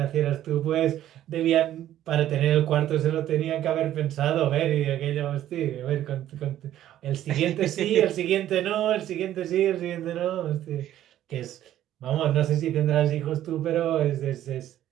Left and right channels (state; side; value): quieter; left; 12.4 dB